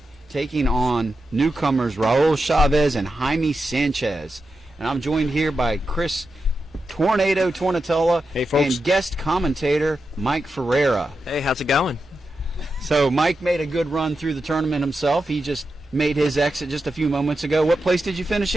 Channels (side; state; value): both; normal; correlation 0.89